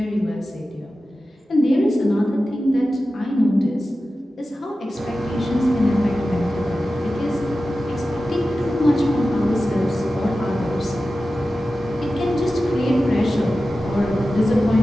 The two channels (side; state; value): both; normal; correlation 0.94